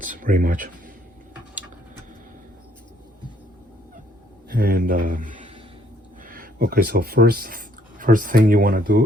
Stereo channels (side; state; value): both; normal; correlation 0.66